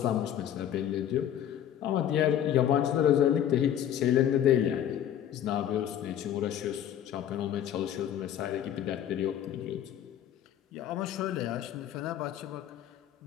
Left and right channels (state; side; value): quieter; right; 10.5 dB